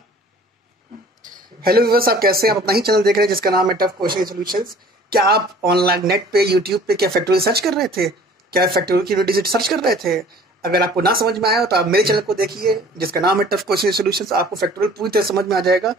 हेलो व्यूअर्स, आप कैसे हैं? आप अपना ही चैनल देख रहे हैं जिसका नाम है टफ क्वेश्चन सॉल्यूशंस। क्या आप ऑनलाइन नेट पे, यूट्यूब पे क्या फैक्टोरियल सर्च कर रहे थे? क्या फैक्टोरियल की डिजिट सर्च कर रहे थे? अगर आपको ना समझ में आया हो तो आप मेरे चैनल को देखिए जिसका नाम है टफ क्वेश्चन सॉल्यूशंस। आपको फैक्टोरियल पूरी तरह समझ में आ जाएगा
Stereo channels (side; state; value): both; normal; correlation 0.50